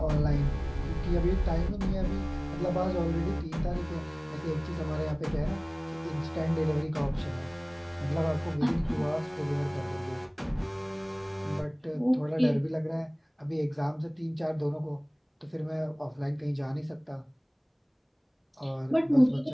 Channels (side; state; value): both; identical; correlation 1.00